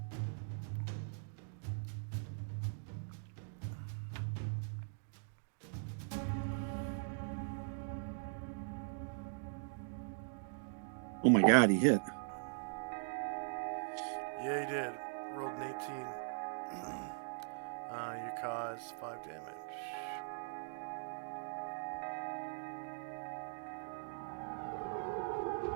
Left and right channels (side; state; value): left; silent; digital silence